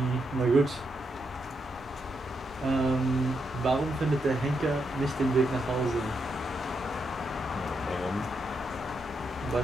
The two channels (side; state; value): both; normal; correlation 0.81